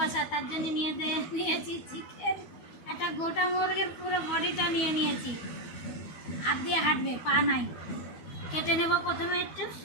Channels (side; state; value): right; late; 12 ms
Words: তার জন্য নিয়েছি চিকেন, একটা গোটা মুরগির পুরো বডিটা নিয়ে নিয়েছি। হাত দিয়ে হাঁটবে, পা নাই। কেটে নেব প্রথমে একটু